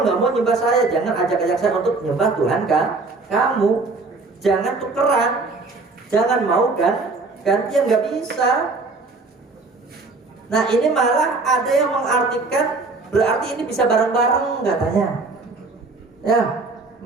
nggak mau nyembah saya, jangan ajak-ajak saya untuk nyembah Tuhan kamu. Jangan tukeran, jangan mau gantian, nggak bisa. Nah ini malah ada yang mengartikan berarti ini bisa bareng-bareng katanya. Ya.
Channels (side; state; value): left; quieter; 3.7 dB